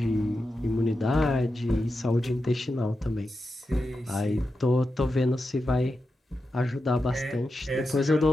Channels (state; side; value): normal; both; correlation 0.89